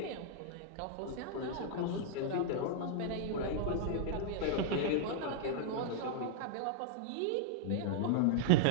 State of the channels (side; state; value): both; different; correlation -0.01